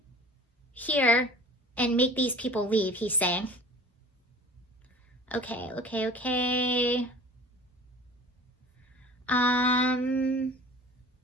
here and make these people leave, he's saying. Okay.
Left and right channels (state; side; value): normal; both; correlation 0.43